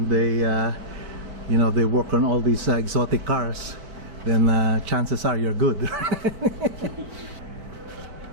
they, you know, they work on all these exotic cars, then chances are you're good.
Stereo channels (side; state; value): left; late; 4.5 ms